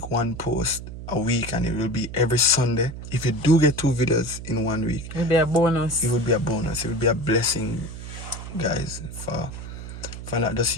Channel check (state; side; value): noise; right; hum, 10 dB below the sound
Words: 1 post a week and it will be every Sunday. If you do get 2 videos in 1 week, it will be a bonus. It would be a bonus. It would be a blessing, guys, for not just